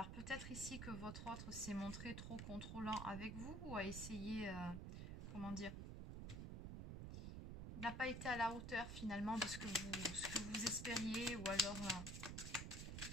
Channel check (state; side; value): noise; right; rumble, 5 dB below the sound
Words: peut-être ici que votre autre s'est montré trop contrôlant avec vous ou a essayé, comment dire, n'a pas été à la hauteur finalement de ce que vous espériez ou alors...